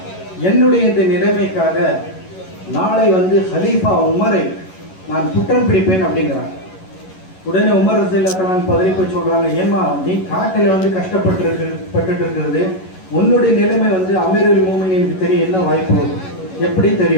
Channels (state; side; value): late; right; 11 ms